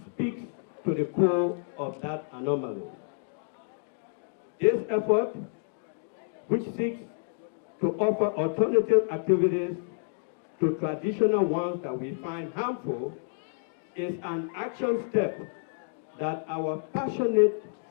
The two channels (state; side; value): silent; right; digital silence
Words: speaks to the core of that anomaly. This effort, which seeks to offer alternative activities to traditional ones that we find harmful, is an action step that our passionate